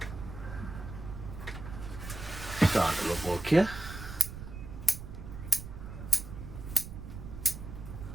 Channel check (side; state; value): right; noise; rumble, 10 dB below the sound